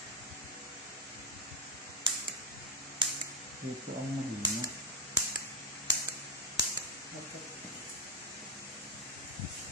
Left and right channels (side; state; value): both; normal; correlation 0.03